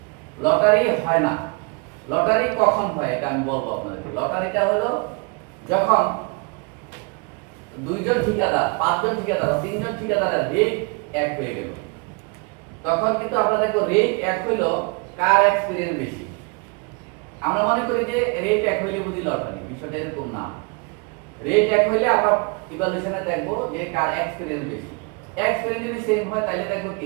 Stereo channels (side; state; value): left; quieter; 32.2 dB